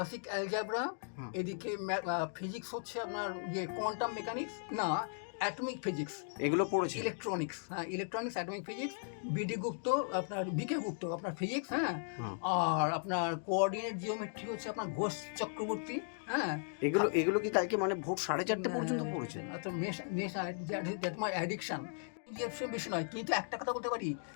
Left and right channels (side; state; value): right; silent; digital silence